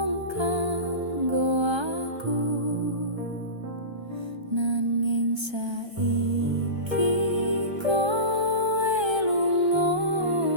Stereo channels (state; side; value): late; left; 1.3 ms